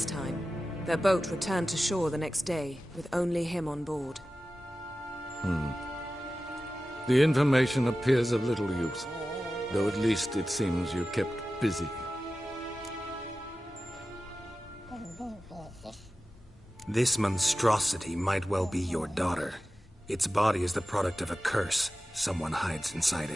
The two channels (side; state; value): both; normal; correlation 0.94